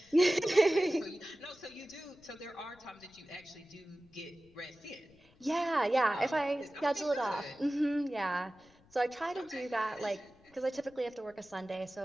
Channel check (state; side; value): noise; left; rumble, 29 dB below the sound